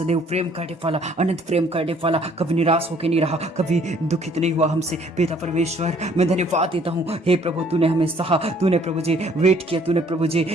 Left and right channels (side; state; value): both; normal; correlation 0.60